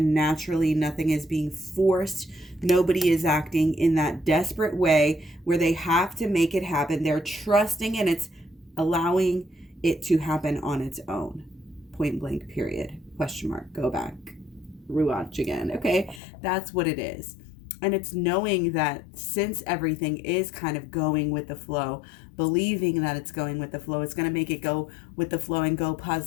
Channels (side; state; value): right; drops out; at 16.2 s